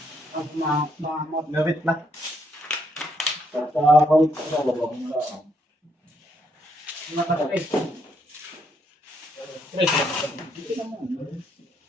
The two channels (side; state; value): both; normal; correlation 0.74